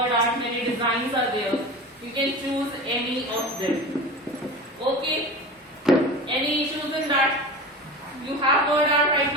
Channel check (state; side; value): normal; both; correlation 0.31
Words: art, many designs are there. You can choose any of them. Okay? Any issues in that? You have word art right